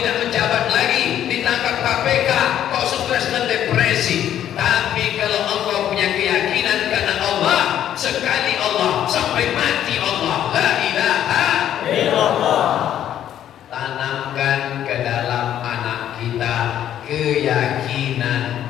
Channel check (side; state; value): right; quieter; 10.8 dB